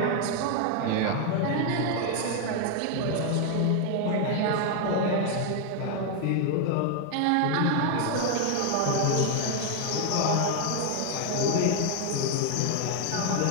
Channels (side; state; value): both; different; correlation 0.00